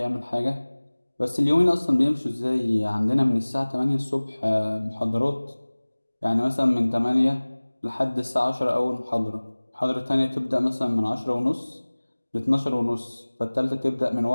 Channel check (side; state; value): both; inverted; correlation -1.00